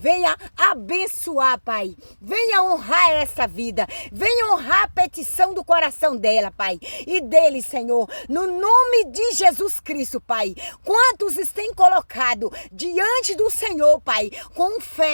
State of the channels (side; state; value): both; inverted; correlation -1.00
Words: abençoar, Pai. Venha honrar essa vida, venha honrar a petição do coração dela, Pai, e dele, Senhor, no nome de Jesus Cristo, Pai. Quantos têm colocado diante do Senhor, Pai, com